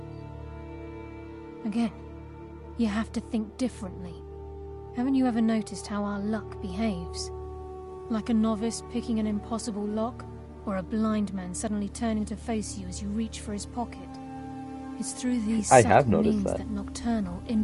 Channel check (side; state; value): both; identical; correlation 1.00